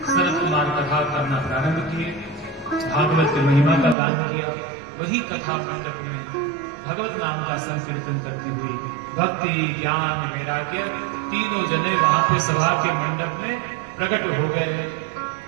सनत कुमार कथा करना प्रारंभ किए, भागवत की महिमा का गान किया, वही कथा मंडप में भगवत नाम का संकीर्तन करती हुई भक्ति ज्ञान वैराग्य तीनों जने वहां पे सभा के मंडप में प्रकट हो गए।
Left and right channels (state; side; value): drops out; left; at 4.0 s